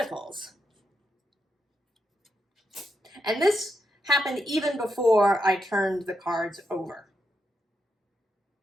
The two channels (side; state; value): both; normal; correlation 0.83